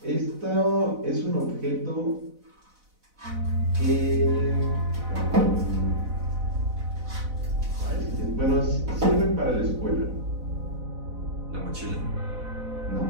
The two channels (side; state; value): left; late; 4.0 ms